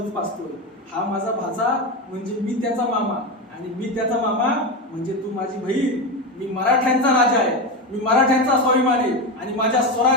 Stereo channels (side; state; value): both; normal; correlation 0.17